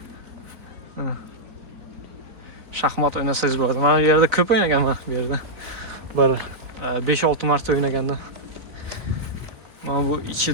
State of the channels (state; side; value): late; left; 3.8 ms